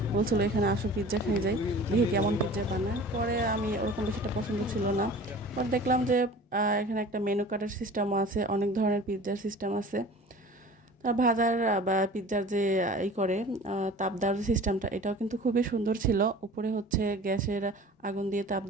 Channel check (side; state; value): both; normal; correlation 0.42